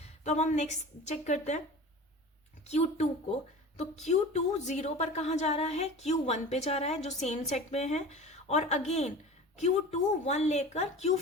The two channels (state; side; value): normal; both; correlation 0.36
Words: तो अब हम नेक्स्ट चेक करते हैं Q2 को। तो Q2 0 पर कहाँ जा रहा है, Q1 पे जा रहा है जो सेम सेट में है। और अगेन Q2 1 लेकर